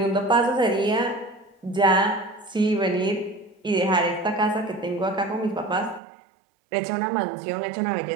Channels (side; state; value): left; drops out; at 6.0 s